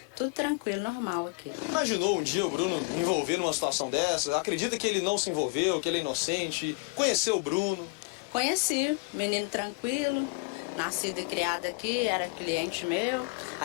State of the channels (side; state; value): right; quieter; 30.4 dB